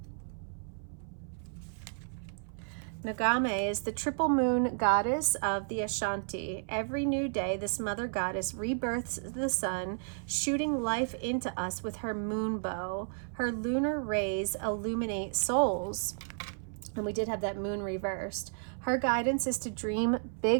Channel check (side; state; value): left; silent; 56 dB below the other